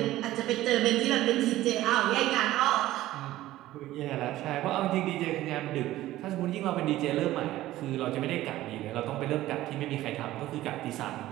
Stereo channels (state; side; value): quieter; left; 15.4 dB